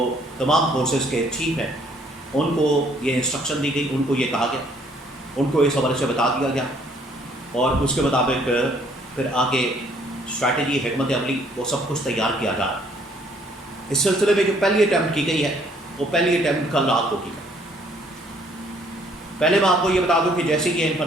تمام فورسز کے چیف ہیں ان کو یہ انسٹرکشن دی گئی، ان کو یہ کہا گیا، ان کو اس حوالے سے بتا دیا گیا اور اس کے مطابق پھر آگے اسٹریٹجی، حکمت عملی، وہ سب کچھ تیار کیا جا رہا ہے۔ اس سلسلے میں جو پہلی اٹیمپٹ کی گئی ہے وہ پہلی اٹیمپٹ کل رات کو کی گئی۔ پہلے میں آپ کو یہ بتا دوں کہ جیسے یہ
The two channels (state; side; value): normal; both; correlation 0.63